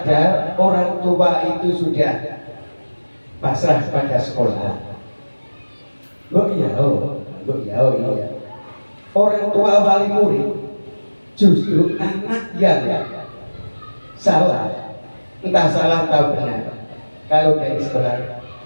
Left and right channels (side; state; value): both; inverted; correlation -1.00